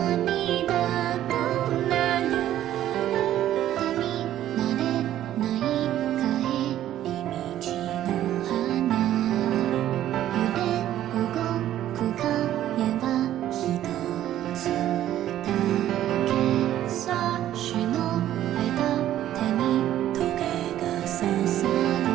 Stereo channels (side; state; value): left; quieter; 12.4 dB